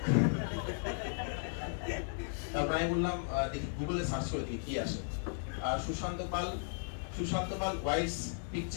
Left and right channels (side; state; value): right; silent; digital silence